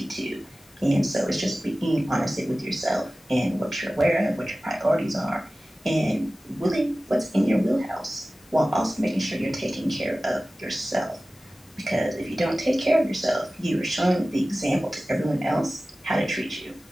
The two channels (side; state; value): left; noise; hiss, 29 dB below the sound